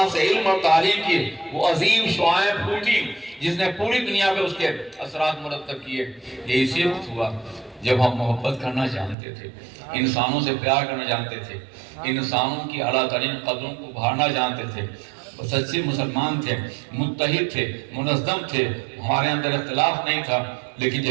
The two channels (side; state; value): left; drops out; at 9.2 s